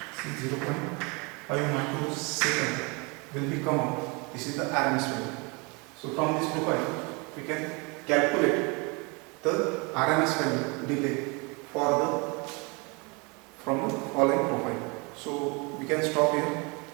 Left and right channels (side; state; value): left; quieter; 29.5 dB